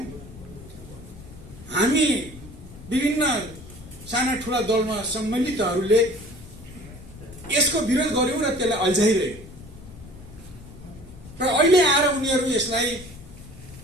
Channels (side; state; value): left; noise; rumble, 17 dB below the sound